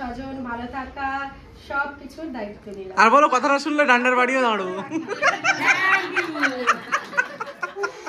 ভালো থাকা সবকিছুর দায়িত্ব নিলাম। আর বলো কথাটা শুনলে ডান্ডার বাড়িও দাঁড়াবো।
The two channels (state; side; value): identical; both; correlation 1.00